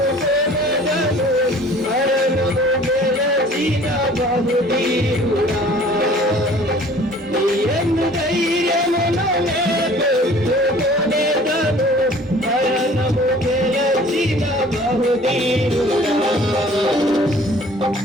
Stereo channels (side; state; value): both; normal; correlation 0.50